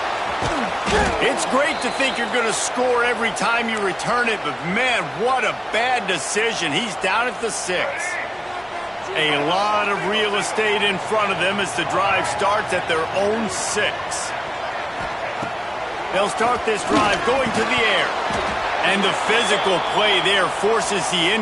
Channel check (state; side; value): identical; both; correlation 1.00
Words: It's great to think you're going to score every time you return it, but man, what a bad decision. He's down at the 6. A lot of real estate in front of them as the drive starts at their own 6. They'll start this drive going to the air. And the physical play there forces the